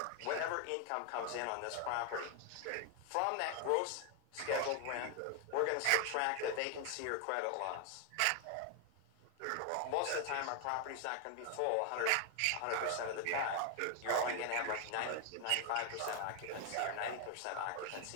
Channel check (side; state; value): both; different; correlation 0.00